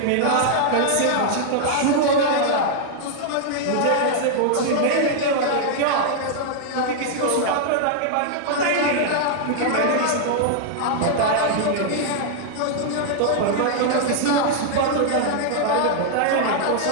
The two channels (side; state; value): both; different; correlation -0.01